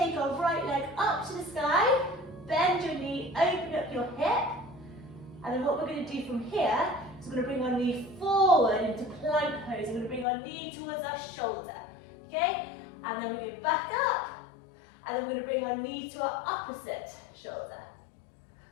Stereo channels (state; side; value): drops out; right; at 10.2 s